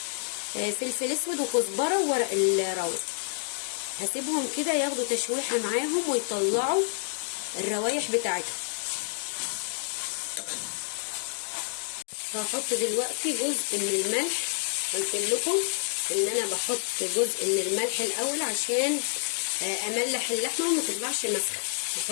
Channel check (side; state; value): right; silent; digital silence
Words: فلفل اسود وكزبره وورق الراوس. هسيبهم كده ياخدوا تشويحه معاهم ويطلعوا الروايح بتاعتهم. هحط دلوقتي جزء من الملح. قلت لكم ان انا بحط جزء من الملح الاول عشان املح اللحمه وما تطلعش مسخه.